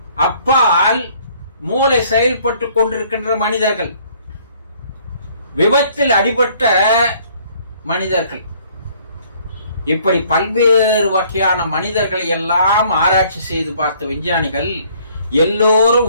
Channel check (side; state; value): both; inverted; correlation -0.60